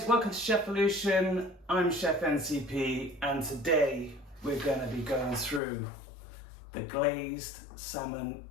welcome to Chefolution. I'm Chef NCP and today we're going to be going through the glazed salmon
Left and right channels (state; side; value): drops out; right; at 5.6 s